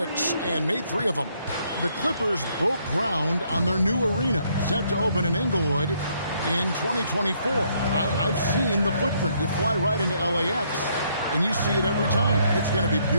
and made 3 of them. The Clippers broke ground on their new arena, set to open in Inglewood in 2024. I've seen the footprint. You fly right into LAX, and you see it every time. It's going to be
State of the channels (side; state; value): both; inverted; correlation -0.70